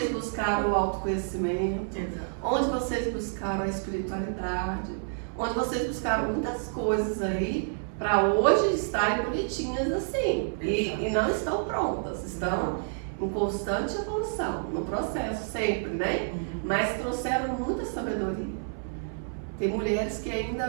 buscaram o autoconhecimento, onde vocês buscaram a espiritualidade, onde vocês buscaram muitas coisas aí para hoje estarem bonitinhas assim. E não estão prontas, estão em constante evolução, no processo sempre, né? Mas trouxeram muita sabedoria. Tem mulheres que ainda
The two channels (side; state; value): left; silent; 59 dB below the other